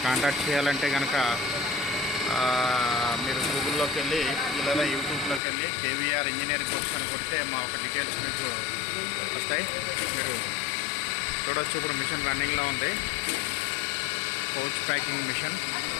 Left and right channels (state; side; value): drops out; right; at 5.4 s